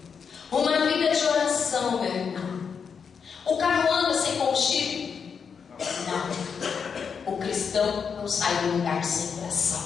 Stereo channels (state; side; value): quieter; right; 6.3 dB